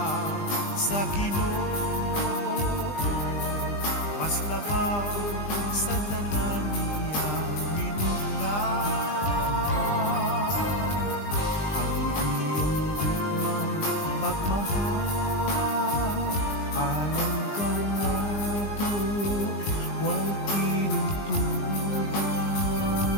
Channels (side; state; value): right; late; 20 ms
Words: sa Ginoo, mas labaw sa tanan niyang minugna. Pagmahal, alam ka nato, way tinutugan.